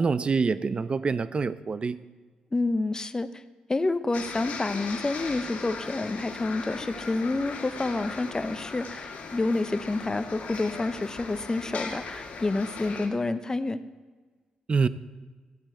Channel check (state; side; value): normal; both; correlation 0.89